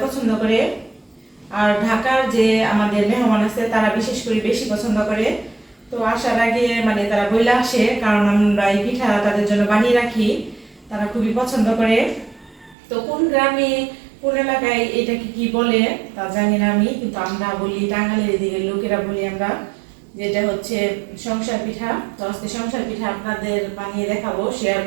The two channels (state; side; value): drops out; left; at 12.8 s